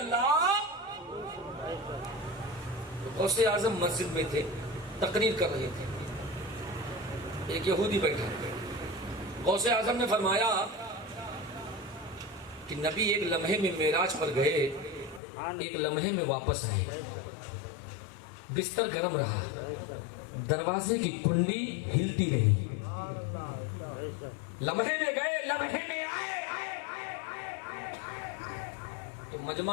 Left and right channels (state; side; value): drops out; right; at 15.2 s